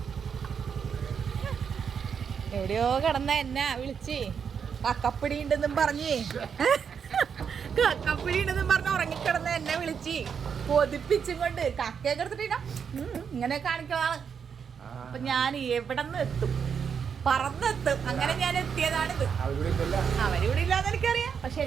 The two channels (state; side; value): quieter; left; 6.9 dB